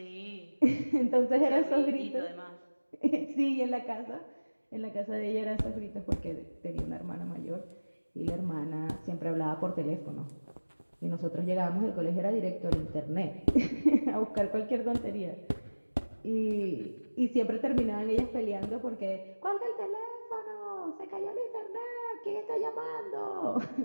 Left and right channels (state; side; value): inverted; both; correlation -1.00